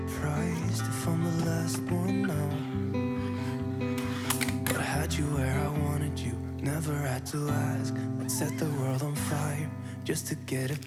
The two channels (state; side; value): identical; both; correlation 1.00